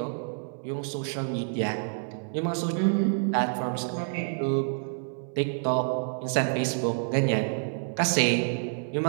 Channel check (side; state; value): left; silent; 59 dB below the other